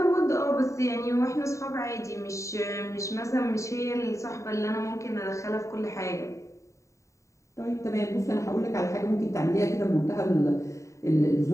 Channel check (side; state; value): right; late; 0.15 ms